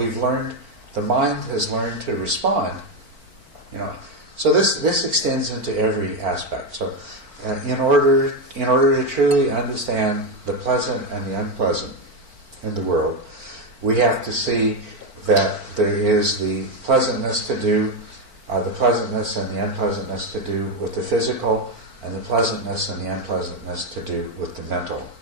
the mind has learned to respond. So this extends into every aspect. So in order to truly understand the pleasant and the unpleasant in the world, we have to see that there is the pleasantness and the unpleasantness to do with the physical, and the pleasantness and the unpleasantness to do with the mental.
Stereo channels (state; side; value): late; left; 4.5 ms